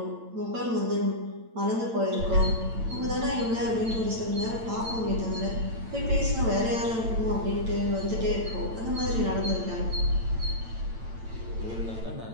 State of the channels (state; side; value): late; left; 8.9 ms